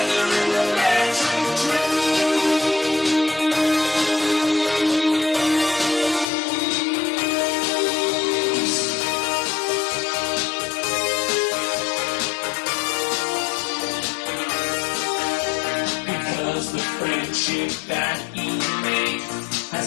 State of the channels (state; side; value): drops out; right; at 6.2 s